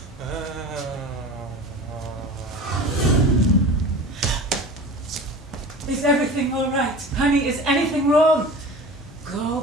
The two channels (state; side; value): normal; both; correlation 0.36